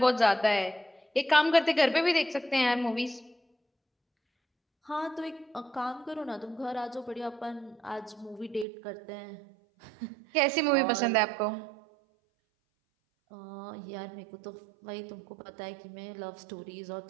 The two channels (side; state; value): left; drops out; at 8.7 s